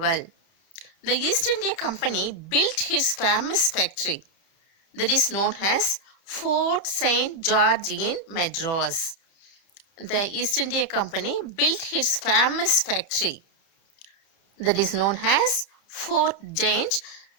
The East India Company built its famous factory that is known as Fort St. George in Madras. The East India Company built its famous factory that is known as Fort St.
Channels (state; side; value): late; right; 30 ms